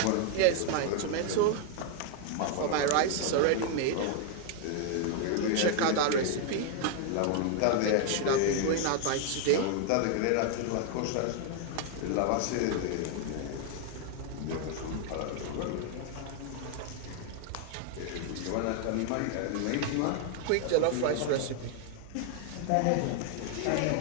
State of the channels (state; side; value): different; both; correlation 0.00